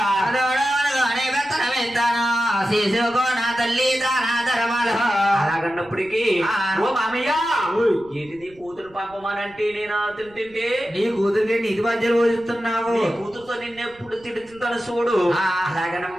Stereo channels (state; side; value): noise; right; rumble, 26 dB below the sound